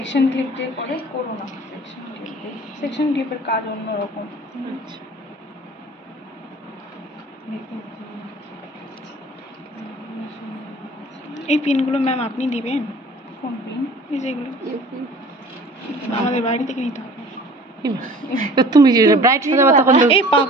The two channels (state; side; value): normal; both; correlation 0.47